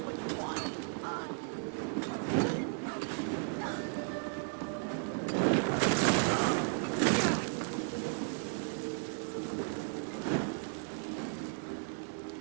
Why are you hitting me?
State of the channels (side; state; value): left; silent; 55 dB below the other